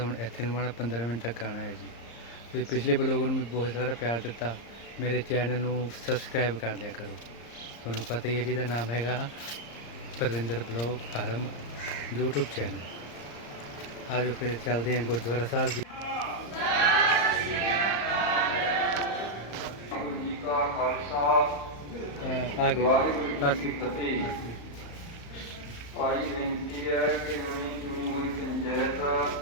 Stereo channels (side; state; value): right; late; 34 ms